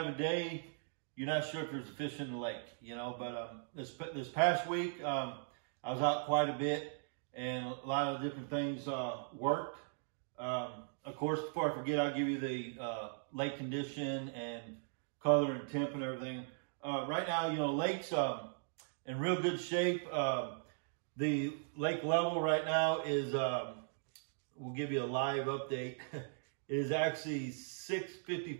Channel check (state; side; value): silent; left; digital silence